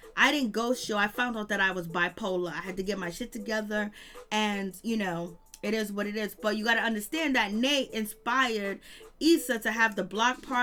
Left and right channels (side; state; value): both; identical; correlation 1.00